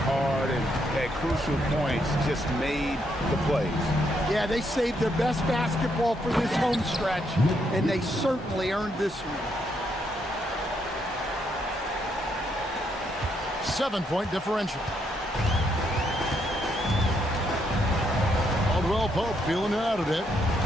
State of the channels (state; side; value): normal; both; correlation 0.75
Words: hard and at crucial points just made the plays. Yeah, they saved their best basketball for this home stretch, and they certainly earned this one. 7-point differential. Caldwell Pope feeling it out a bit.